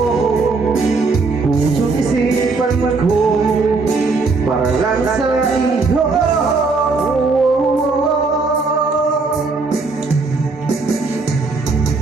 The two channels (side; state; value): left; quieter; 4.0 dB